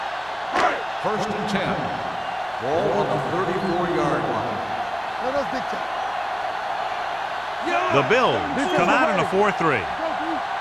First and 10. Ball on the 34-yard line. The Bills come out in a 4-3.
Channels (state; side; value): identical; both; correlation 1.00